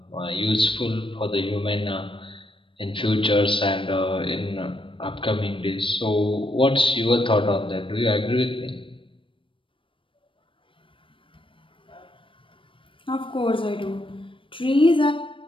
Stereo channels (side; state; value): right; late; 0.25 ms